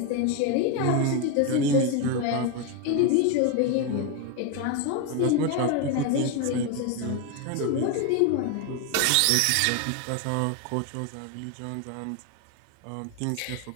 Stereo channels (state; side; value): different; both; correlation 0.02